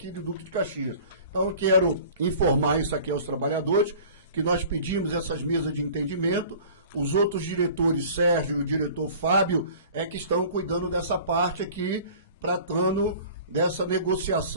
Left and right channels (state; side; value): inverted; both; correlation -0.45